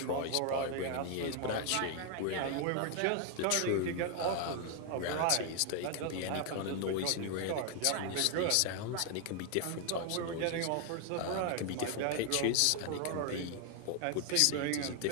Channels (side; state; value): both; different; correlation 0.00